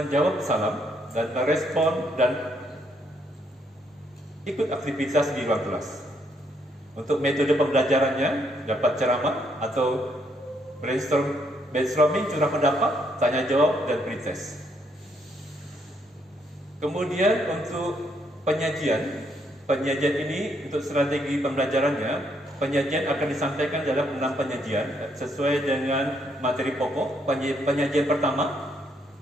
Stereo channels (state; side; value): normal; both; correlation 0.72